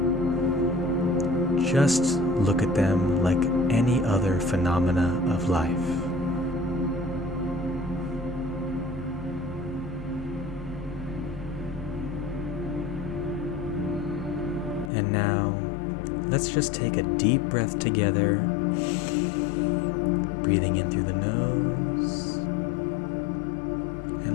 Just look at them like any other phenomena of life. And now, let's just take a deep breath together, breathing in through the nose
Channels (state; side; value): drops out; right; at 14.9 s